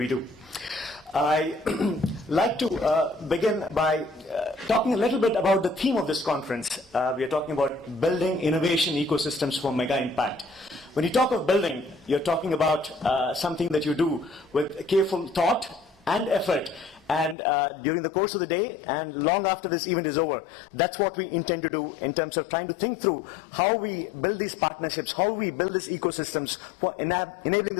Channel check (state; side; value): drops out; right; at 17.4 s